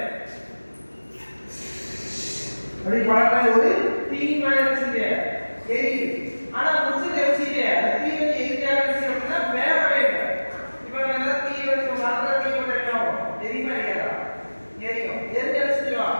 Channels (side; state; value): both; inverted; correlation -1.00